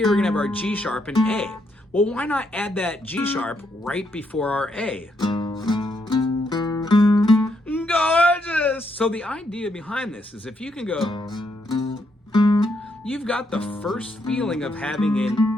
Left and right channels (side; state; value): both; normal; correlation 0.77